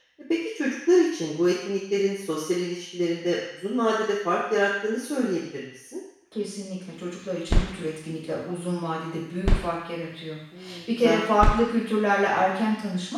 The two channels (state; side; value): identical; both; correlation 1.00